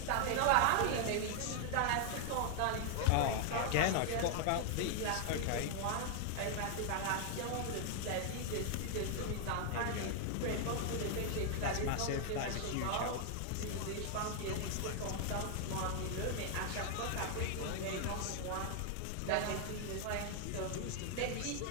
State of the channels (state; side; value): different; both; correlation 0.00